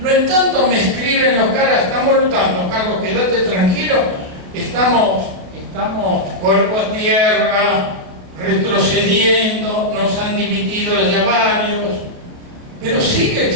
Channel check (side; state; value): left; late; 28 ms